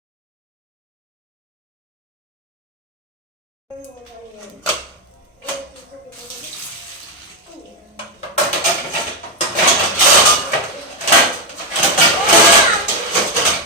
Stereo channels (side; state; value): both; normal; correlation 0.06